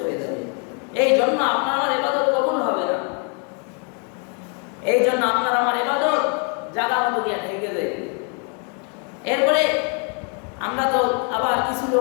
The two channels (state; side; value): quieter; right; 39.4 dB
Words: হয়ে যাবে। এই জন্য আপনার আমার ইবাদত কবুল হবে না। এই জন্য আপনার আমার ইবাদত জায়গা মতো গিয়ে ঠেকে যায়। এরপরে আমরা তো আবার কিছু